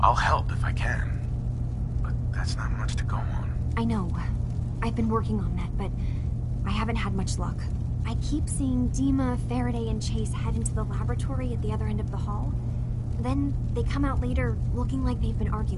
I'll help if I can. But that's not much to go on. I know. I've been working on that, but I haven't had much luck. I keep seeing Dima, Faraday, and Chase head into the laboratory at the other end of the hall. Then they come out later looking like they've been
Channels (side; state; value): both; identical; correlation 1.00